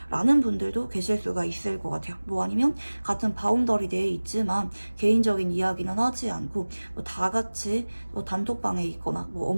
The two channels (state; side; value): inverted; both; correlation -1.00